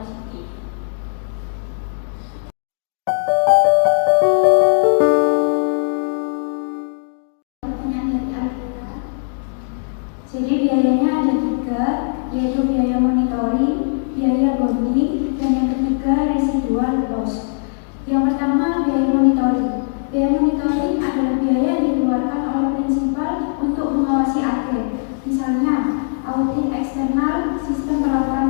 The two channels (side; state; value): right; silent; digital silence